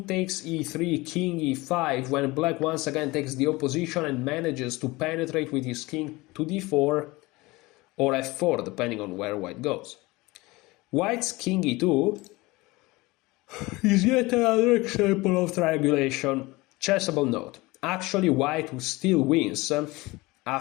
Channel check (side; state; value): right; quieter; 22.0 dB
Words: takes e3, king e5, when black once again takes the opposition and manages to penetrate with his king to d4 or f4, depending on where white goes. White's king e2 is yet another example of triangulation. Chessable note. Actually, white still wins